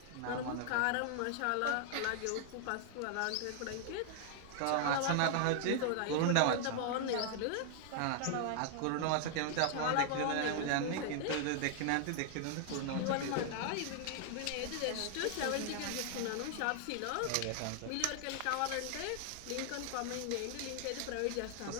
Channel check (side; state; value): both; different; correlation 0.00